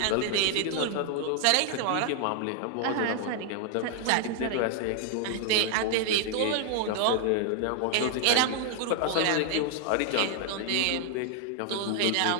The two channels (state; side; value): different; both; correlation 0.00